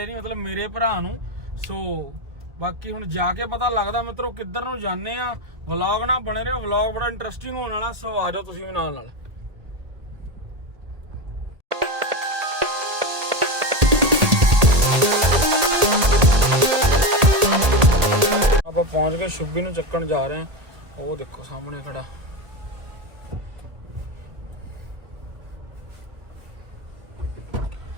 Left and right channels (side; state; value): left; late; 1.8 ms